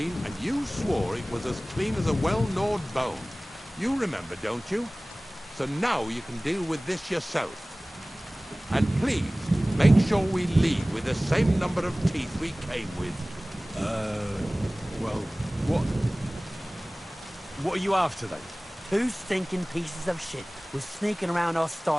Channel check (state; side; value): normal; both; correlation 0.98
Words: and you swore it was as clean as a well-gnawed bone. You remember, don't you? So now you can deal with this yourself. And please, make sure we leave with the same number of teeth we came with. Well, what are you after, then? Two stinking pieces of shit was sneaking around our